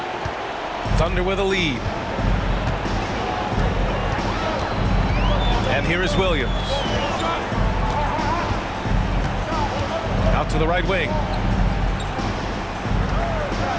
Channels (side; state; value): both; identical; correlation 1.00